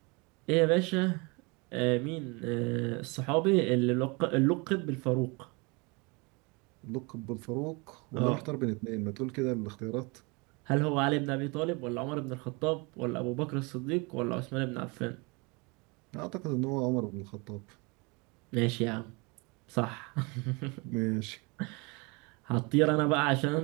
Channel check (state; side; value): quieter; left; 28.9 dB